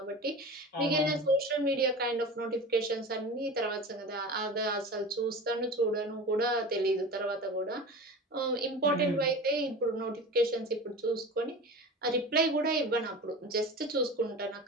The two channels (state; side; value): normal; both; correlation 0.32